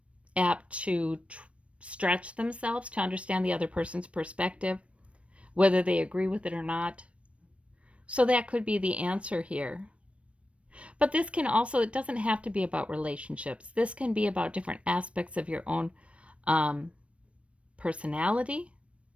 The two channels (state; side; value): late; left; 0.062 ms